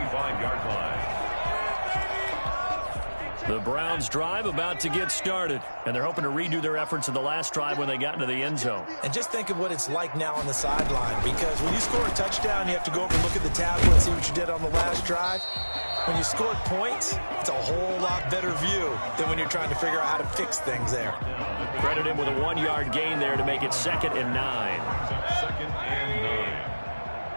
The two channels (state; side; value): inverted; both; correlation -1.00